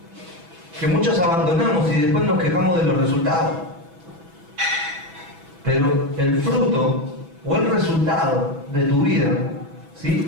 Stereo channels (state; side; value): late; left; 6.1 ms